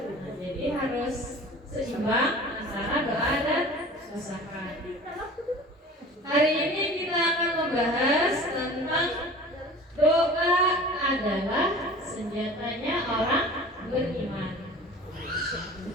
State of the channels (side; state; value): both; normal; correlation 0.41